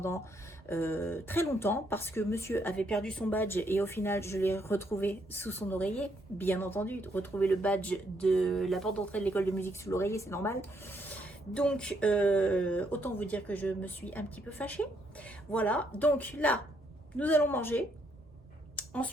très longtemps parce que monsieur avait perdu son badge et au final, je l'ai retrouvé sous son oreiller. Bien entendu, retrouver le badge de la porte d'entrée de l'école de musique sous l'oreiller, c'est normal. Donc, autant vous dire que je me suis un petit peu fâchée. Voilà, donc là, nous allons manger.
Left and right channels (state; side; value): normal; both; correlation 0.73